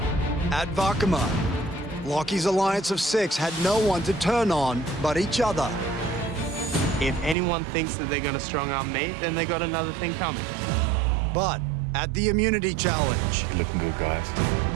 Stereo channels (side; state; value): left; drops out; at 7.4 s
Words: At Vakama, Lockie's alliance of 6 had no one to turn on but each other. If anyone thinks that they're going to strong-arm me, then they got another thing coming. But at the immunity challenge, You're looking good, guys.